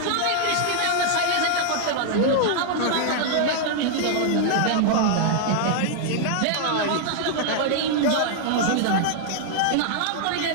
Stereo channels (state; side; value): different; both; correlation -0.01